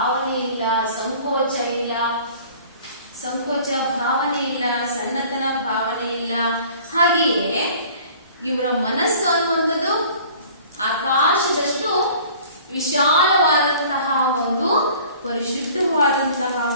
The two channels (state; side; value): inverted; both; correlation -0.49